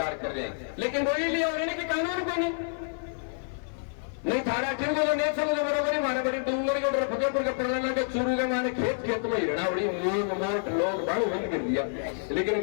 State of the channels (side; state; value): right; silent; 59 dB below the other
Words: कर रहे हैं। लेकिन वही लिया हो रहे कि कानून को नहीं थारा ठीक हो नहीं समझ बरोबर ही मारे बड़ी डूंगर के उधर फतेहपुर के पड़ने के चूरू के मारे खेत में हिरणा उड़ी मूंग मोट लोग बड़ू बंद कर दिया। लेकिन